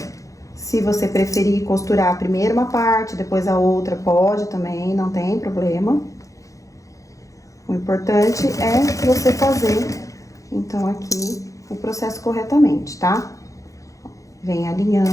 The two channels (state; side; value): late; right; 0.16 ms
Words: Se você preferir costurar primeiro uma parte, depois a outra, pode também, não tem problema. O importante é você fazer, então, aqui o processo corretamente, tá? Vem